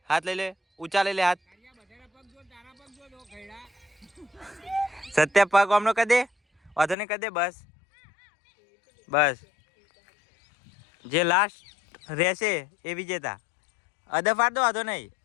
હાથ લઈ લે, ઊંચા લઈ લે હાથ. સત્ય પગ આમનો કરી દે, વાંધો નહીં કરી દે, બસ બસ. જે લાસ્ટ રહેશે એ વિજેતા. અદા ફાડ દો, વાંધો નહીં,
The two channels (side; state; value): right; drops out; at 7.0 s